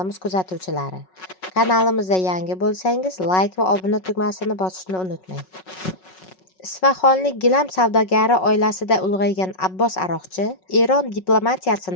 kuzatuvchilari. Kanalimizga yangi bo'lsangiz, like va obuna tugmasini bosishni unutmang. Isfahonlik gilam savdogari oilasida ulg'aygan Abbos aroqchi Eron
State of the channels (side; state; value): right; late; 5.4 ms